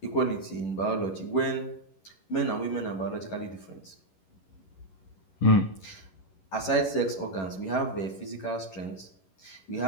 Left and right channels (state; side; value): late; right; 11 ms